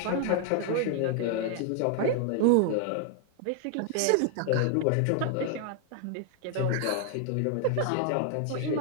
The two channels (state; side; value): different; both; correlation 0.00